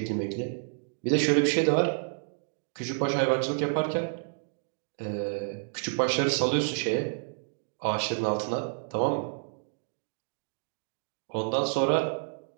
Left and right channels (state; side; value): silent; left; digital silence